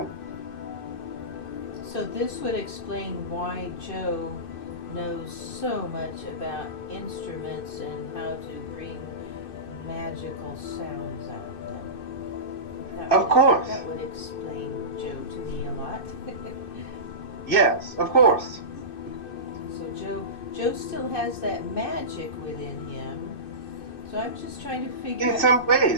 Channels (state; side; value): late; right; 2.6 ms